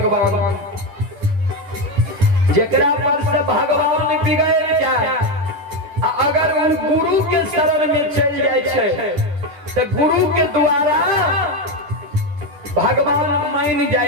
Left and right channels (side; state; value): left; late; 10 ms